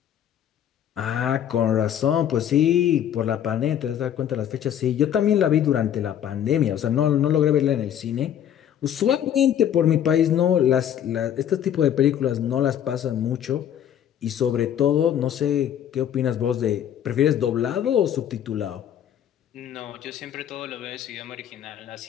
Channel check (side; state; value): right; quieter; 10.0 dB